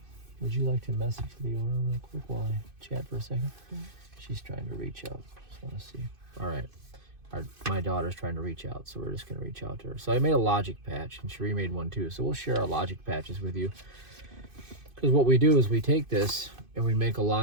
Would you like to message the owner real quick while I chat for a second? Mm-hmm. She's trying to reach out. Just want to see. All right. My daughter's trying to reach out, so we're just going to reach out to her. So I made a logic patch, and Cherie made one too. So we'll share our logic patches with you. Because what we do is we take this and we make a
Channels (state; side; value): late; left; 2.5 ms